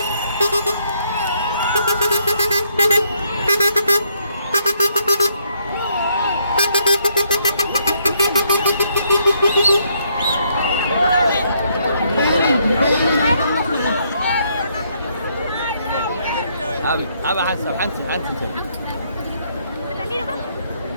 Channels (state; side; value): inverted; both; correlation -0.72